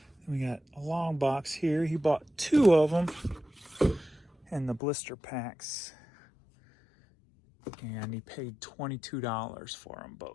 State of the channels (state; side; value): drops out; right; at 4.8 s